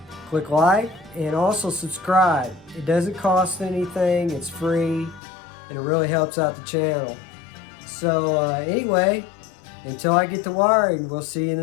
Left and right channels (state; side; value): drops out; right; at 5.2 s